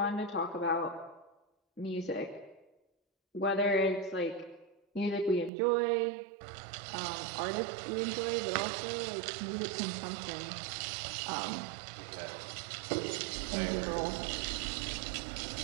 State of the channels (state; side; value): drops out; left; at 5.5 s